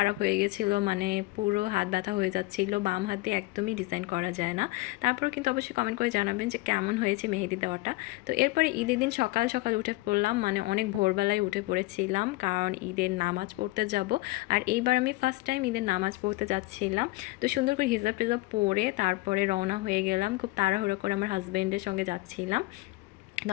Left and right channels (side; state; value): right; quieter; 21.0 dB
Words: হয়ে গেছিলো, মানে পুরো হাত ব্যথা হয়ে যাচ্ছিলো। বাম হাতে একদমই ডিজাইন করা যায় না। তারপর কিন্তু অবশ্যই কমেন্ট করে জানাবেন যে কেমন হয়েছে মেহেদি দেওয়াটা। তো এরপরে ঈদের দিন সকাল সকাল উঠে পড়লাম, মানে অনেক ভোরবেলায় উঠে পড়েছিলাম, কারণ ঈদের নামাজ পড়তে যাব। আর এইবার আমি ফার্স্ট টাইম ঈদের নামাজ পড়তে যাচ্ছিলাম। তো সুন্দর করে হিজাব টিজাব পরে তারপরে রওনা হয়ে গেলাম, খুব তাড়াহুড়ো করে আমার হাজব্যান্ডের সঙ্গে যাচ্ছিলাম। তো